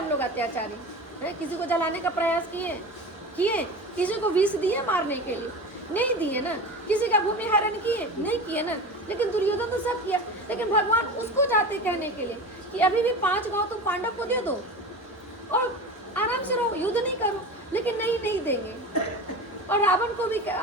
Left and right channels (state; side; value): normal; both; correlation 0.30